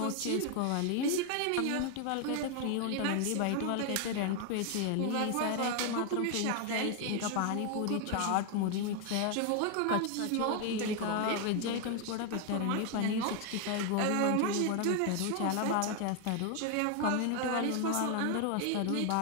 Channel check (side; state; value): both; different; correlation 0.00